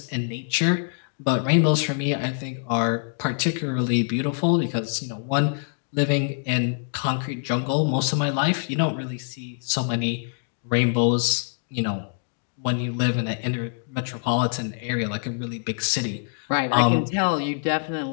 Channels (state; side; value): silent; right; digital silence